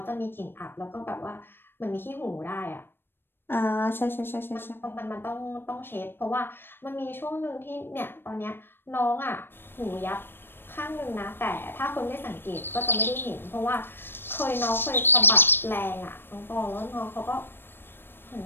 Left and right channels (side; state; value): right; late; 0.10 ms